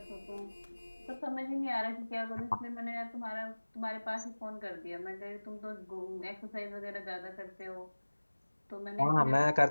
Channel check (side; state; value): both; inverted; correlation -1.00